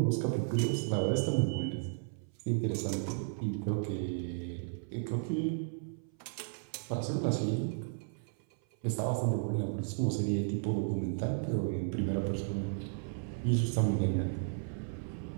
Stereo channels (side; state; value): left; silent; 55 dB below the other